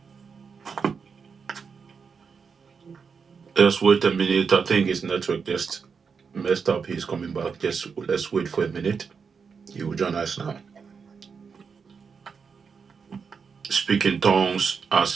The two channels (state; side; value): quieter; left; 5.8 dB